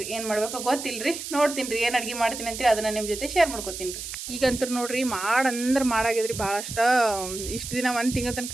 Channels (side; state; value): right; noise; hiss, 8 dB below the sound